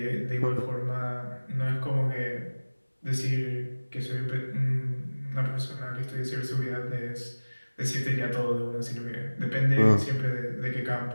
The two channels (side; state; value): both; inverted; correlation -1.00